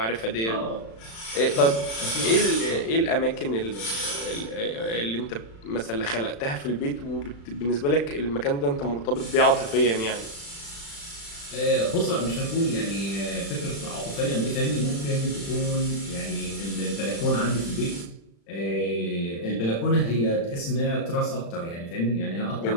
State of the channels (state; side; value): late; right; 35 ms